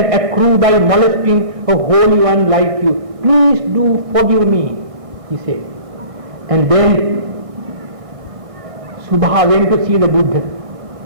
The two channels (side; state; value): left; late; 1.6 ms